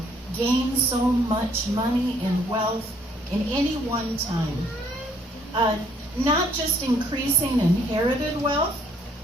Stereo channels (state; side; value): normal; both; correlation 0.65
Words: gain so much money and wealth in any one time. Not just increasing inherited wealth,